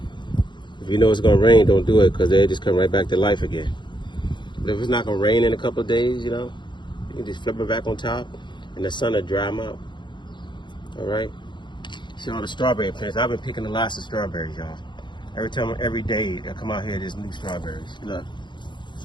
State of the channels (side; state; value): right; late; 0.22 ms